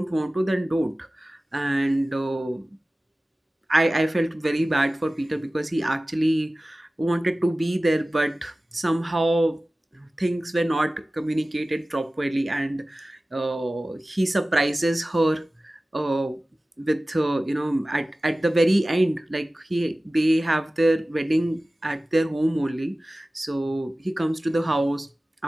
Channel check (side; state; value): both; normal; correlation 0.97